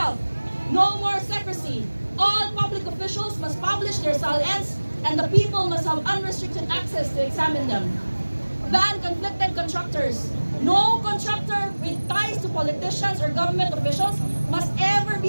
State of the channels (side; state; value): both; inverted; correlation -1.00